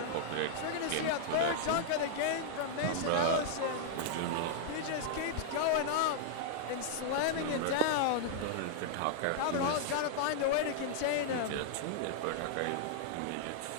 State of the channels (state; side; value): different; both; correlation -0.01